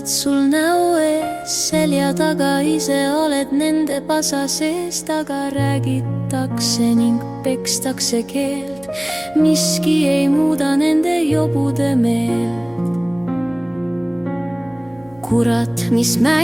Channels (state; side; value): noise; right; hum, 26 dB below the sound